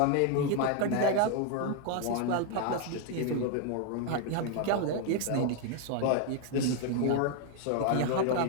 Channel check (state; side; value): different; both; correlation 0.01